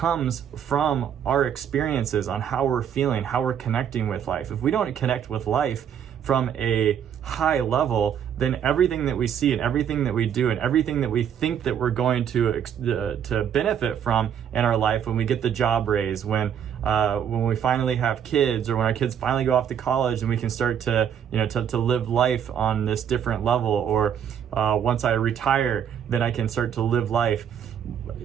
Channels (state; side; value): quieter; left; 8.7 dB